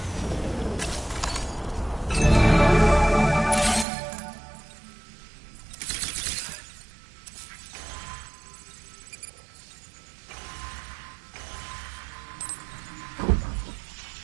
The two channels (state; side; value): drops out; left; at 3.9 s